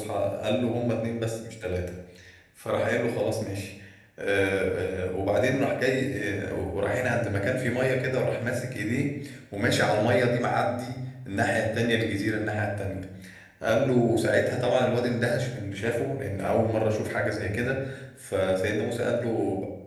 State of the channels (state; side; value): identical; both; correlation 1.00